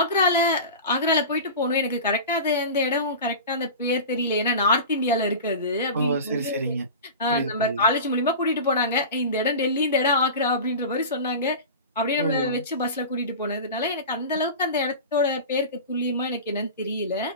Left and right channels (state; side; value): inverted; both; correlation -0.31